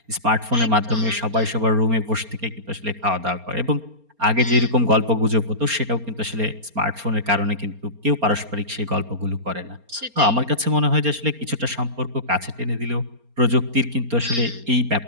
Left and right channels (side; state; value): left; late; 4.3 ms